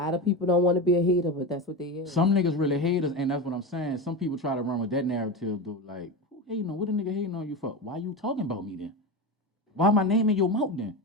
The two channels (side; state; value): both; normal; correlation 0.21